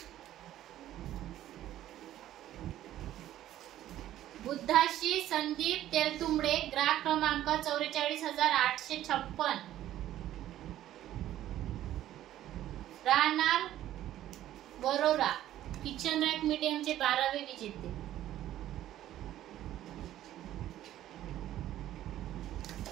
बुद्धाशी संदीप तेलतुंबडे, ग्राहक क्रमांक 44,856, राहणार वरोरा, किचन रॅक मीडियमचे 12वे विजेते.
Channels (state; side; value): quieter; left; 13.0 dB